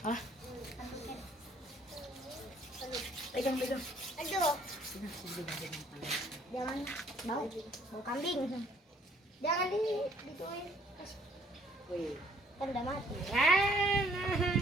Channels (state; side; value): normal; both; correlation 0.62